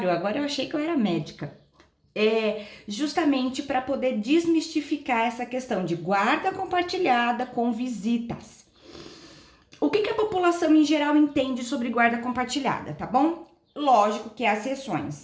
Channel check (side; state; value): both; identical; correlation 1.00